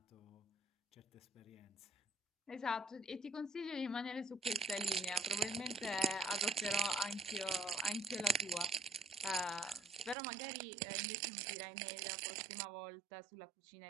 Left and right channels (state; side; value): drops out; left; at 10.2 s